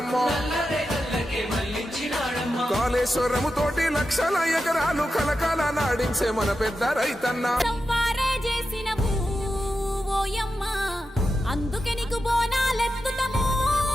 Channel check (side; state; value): both; normal; correlation 0.90